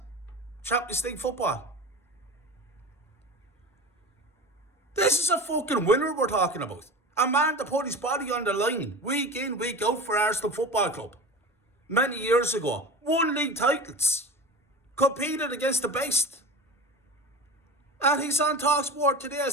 Champions League football. This is a fucking winner we're talking about. A man that put his body on the line week in, week out for Arsenal Football Club. Many years ago. Won league titles. Competed against the best. And he's on TalkSport today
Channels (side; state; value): both; normal; correlation 0.31